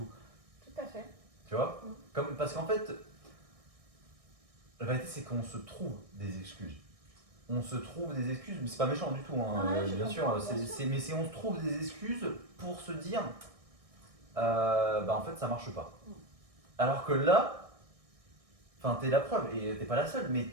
tout à fait. Tu vois Mm. Parce qu'en fait, la vérité, c'est qu'on se trouve des excuses. On se trouve des excuses, mais c'est pas méchant du tout, hein, Ouais, je bien sûr. comprends, bien sûr. Mais on se trouve des excuses pour se dire, bah en fait, ça marche pas. Mm. Alors que là, enfin, t'es la preuve, et t'es pas la seule, mais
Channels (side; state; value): left; late; 1.6 ms